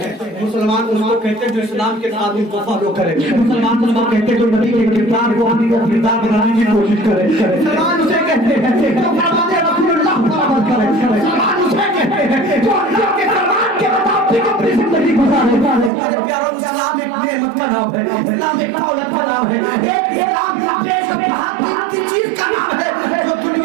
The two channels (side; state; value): left; drops out; at 15.9 s